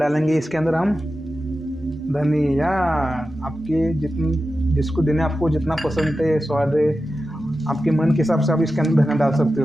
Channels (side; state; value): both; normal; correlation 0.92